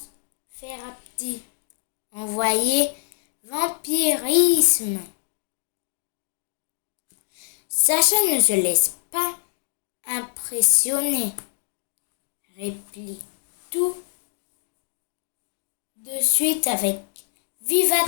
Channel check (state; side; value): silent; right; digital silence